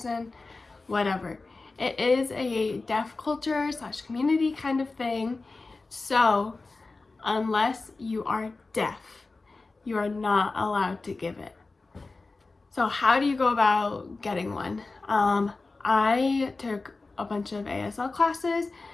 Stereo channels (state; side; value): quieter; right; 3.6 dB